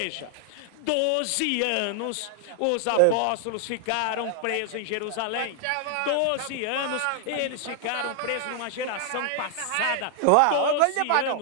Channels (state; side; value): different; both; correlation 0.00